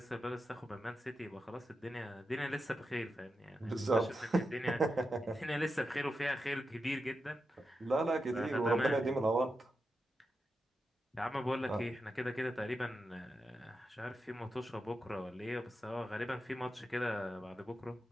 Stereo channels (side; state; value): both; normal; correlation 0.88